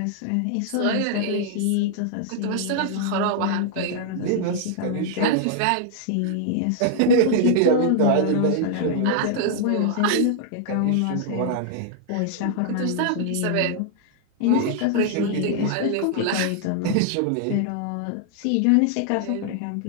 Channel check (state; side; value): different; both; correlation -0.01